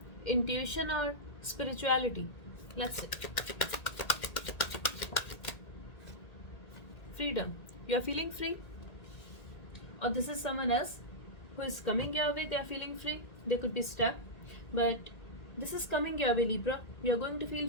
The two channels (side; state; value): right; late; 1.9 ms